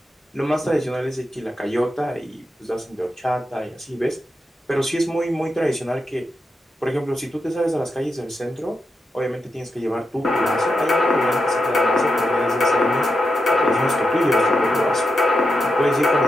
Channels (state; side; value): normal; both; correlation 0.86